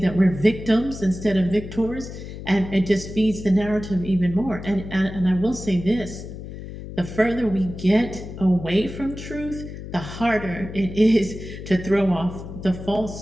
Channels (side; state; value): left; noise; hum, 11 dB below the sound